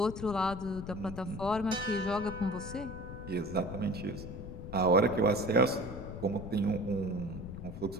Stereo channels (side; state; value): left; noise; rumble, 10 dB below the sound